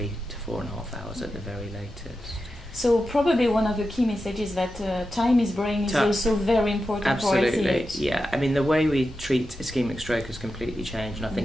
to 4.5 hours at the very latest. So probably one of the key messages that time is brain is also very important. Absolutely, for ICH. Yeah. I mean, the way we treat ischemic stroke has completely changed, and I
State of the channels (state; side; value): normal; both; correlation 0.90